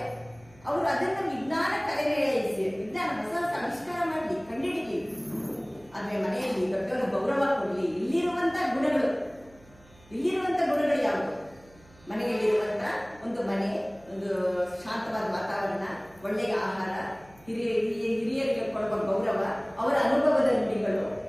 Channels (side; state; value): right; noise; hum, 26 dB below the sound